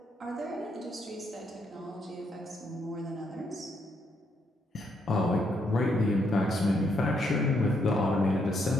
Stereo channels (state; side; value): normal; both; correlation 0.75